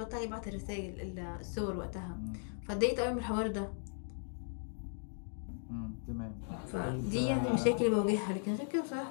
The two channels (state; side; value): silent; right; 53 dB below the other